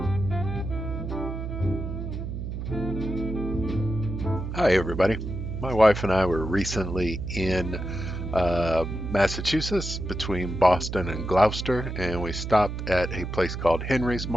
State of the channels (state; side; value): noise; right; hum, 5 dB below the sound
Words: everybody. My wife and I were recently in Massachusetts between Boston and Gloucester, and we stopped at a place called Henry's